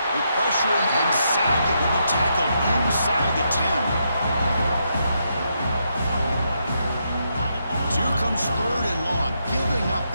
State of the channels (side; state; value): both; inverted; correlation -0.80